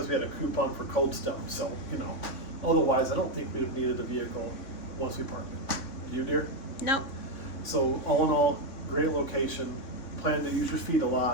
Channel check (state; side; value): late; right; 3.6 ms